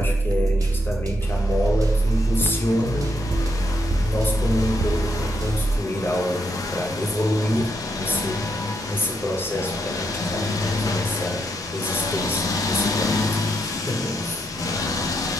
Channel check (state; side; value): normal; both; correlation 0.78